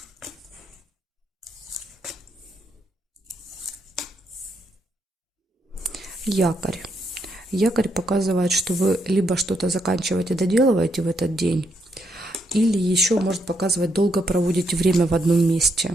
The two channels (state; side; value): normal; both; correlation 0.77